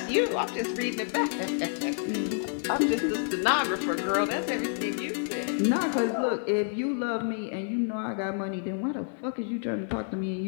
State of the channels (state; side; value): silent; right; digital silence